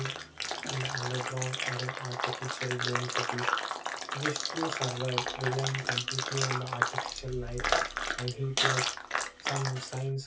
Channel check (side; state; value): both; identical; correlation 1.00